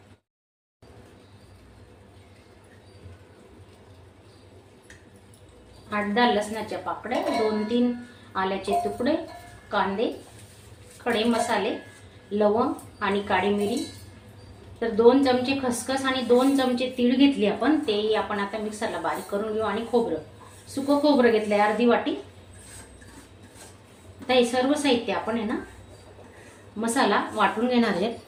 आठ 10 लसणाच्या पाकळ्या, 2-3 आल्याचे तुकडे, कांदे, खडे मसाले, लवंग आणि काळी मिरी। तर 2 चमचे खसखस आणि 2 चमचे तीळ घेतली आपण, ते आपण आता मिक्सरला बारीक करून घेऊ। आणि खोबरं, सुकं खोबरं घेतलंय अर्धी वाटी। आता हे सर्व साहित्य आपण आहे ना मसाला वाटून घेणार आहे।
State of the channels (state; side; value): identical; both; correlation 1.00